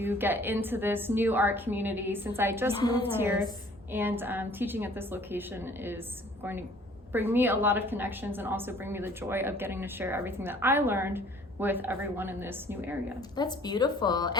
get into this new art community since I just moved here, and teaching at this location is going to bring me a lot of connections and also bring me the joy of getting to share everything that I learned with everyone in this new area. That's beautiful.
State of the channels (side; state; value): both; normal; correlation 0.54